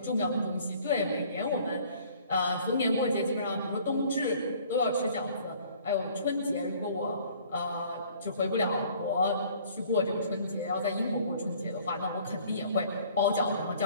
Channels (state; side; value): inverted; both; correlation -0.55